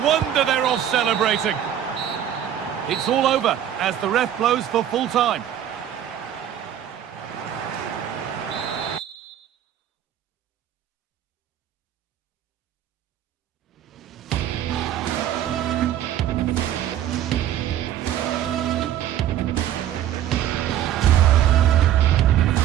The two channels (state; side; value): quieter; left; 10.8 dB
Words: wonder they're off celebrating. It's all over as the ref blows for full time.